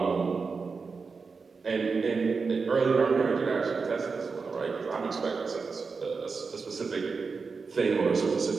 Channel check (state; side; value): quieter; left; 4.8 dB